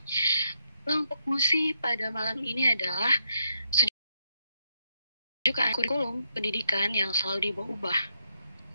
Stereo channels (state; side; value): inverted; both; correlation -0.78